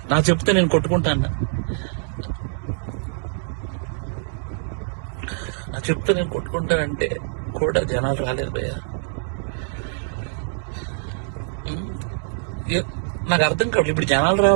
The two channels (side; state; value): left; silent; 63 dB below the other